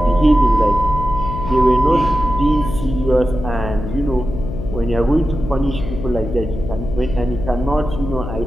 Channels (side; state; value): left; noise; hum, 7 dB below the sound